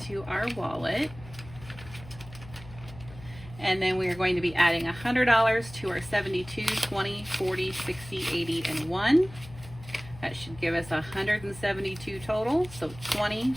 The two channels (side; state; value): left; noise; hum, 17 dB below the sound